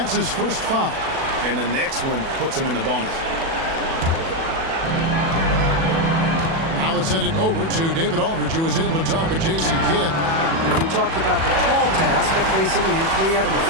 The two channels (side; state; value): left; late; 37 ms